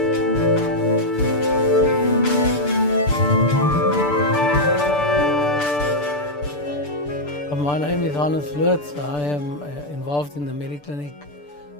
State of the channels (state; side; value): late; right; 6.8 ms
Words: My name is Hannes Lutz. I am involved in the Medi-Clinic